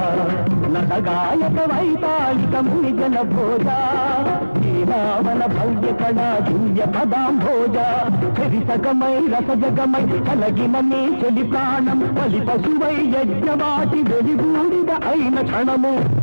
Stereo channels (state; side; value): inverted; both; correlation -1.00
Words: నటగాయక వైతాళిక మునిజన భోజ. శ్రీరామన భవ్య కళా దివ్య పదాంభోజ. చరితకమై రసజగమై కలగిన నీ చెలి ప్రాణం బలి పశువై యజ్ఞవాటి వెలిగూడిద అయిన క్షణము.